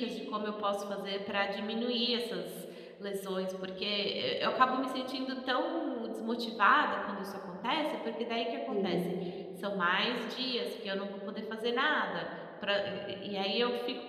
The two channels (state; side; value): identical; both; correlation 1.00